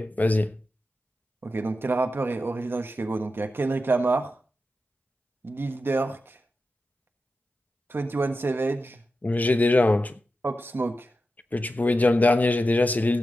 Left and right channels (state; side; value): normal; both; correlation 0.90